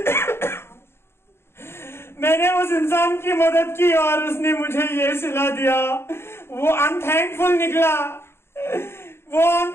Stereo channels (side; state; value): right; late; 0.12 ms